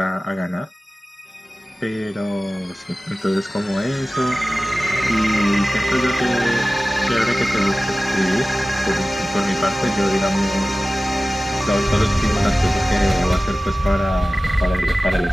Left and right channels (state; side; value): normal; both; correlation 0.96